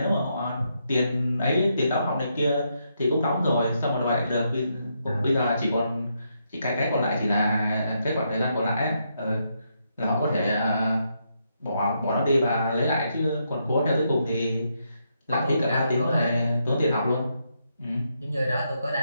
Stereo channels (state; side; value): inverted; both; correlation -0.79